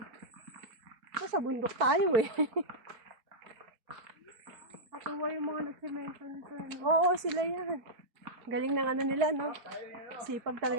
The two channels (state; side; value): late; left; 4.7 ms